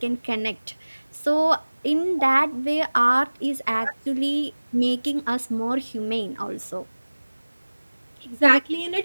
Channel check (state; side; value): inverted; both; correlation -1.00